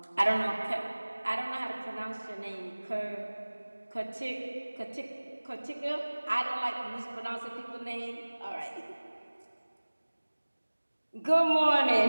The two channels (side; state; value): both; inverted; correlation -1.00